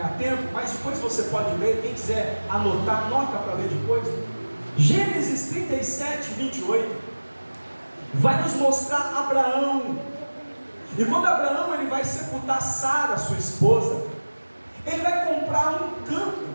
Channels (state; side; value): inverted; both; correlation -1.00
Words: tempo, mas depois você pode ler. Quem quiser anotar, anota para ler depois. Gênesis 37, 28 vai nos mostrar Abraão. E quando Abraão ele vai sepultar Sara, sua esposa, ele vai comprar um campo,